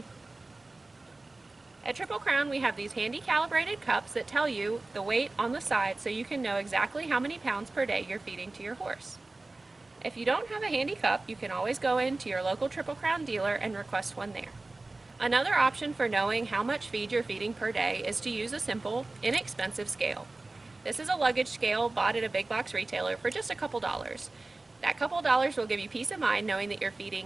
At Triple Crown, we have these handy calibrated cups that tell you the weight on the side so you can know exactly how many pounds per day you're feeding to your horse. If you don't have a handy cup, you can always go into your local Triple Crown dealer and request one there. Another option for knowing how much feed you're feeding per day is to use a simple, inexpensive scale. This is a luggage scale bought at a big box retailer for just a couple dollars. That couple dollars will give you peace of mind knowing that you're feeding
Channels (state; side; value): quieter; left; 3.1 dB